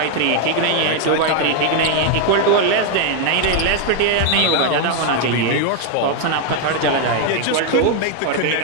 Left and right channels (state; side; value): different; both; correlation 0.00